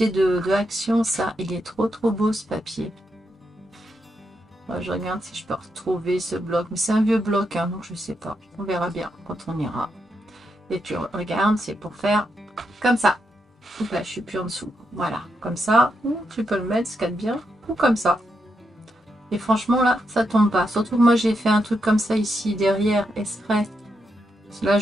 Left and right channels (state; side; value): normal; both; correlation 0.82